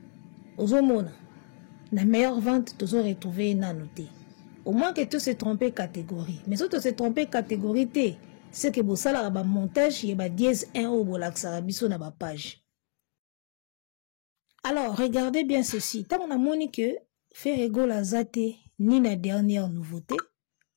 Au moins, la meilleure vente, tu as retrouvé une noté. Au moins que tu se trompé catégorie. Mais si tu se trompé catégorie, c'est que vous savez, le montage, il y a dièse 1 au bolaxarabiso na ba page. Alors, regardez bien ceci. Tant on a moni que faire égale à zate, ni la dernière nouveauté,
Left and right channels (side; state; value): right; silent; 55 dB below the other